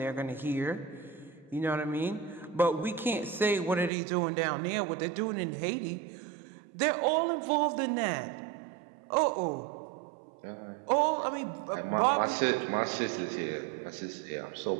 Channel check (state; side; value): drops out; left; at 3.9 s